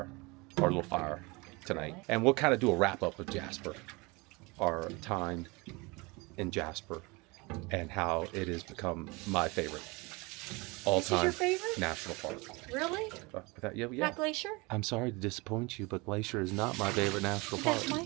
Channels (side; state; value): left; quieter; 26.0 dB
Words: or a little fire tonight, and we'll kind of do a wrap up of Jasper, our time in Jasper, and how it has become my favorite all-time your favorite? national park. Really? Yeah. Not Glacier? I'm sorry to disappoint you, but Glacier is not my favorite national park. That's my